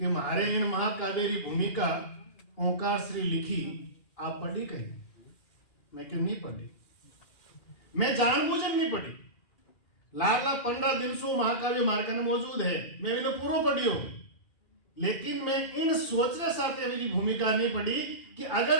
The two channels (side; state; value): right; late; 2.4 ms